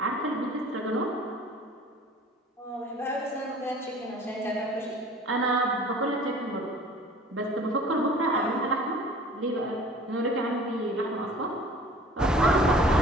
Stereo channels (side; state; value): both; normal; correlation 0.47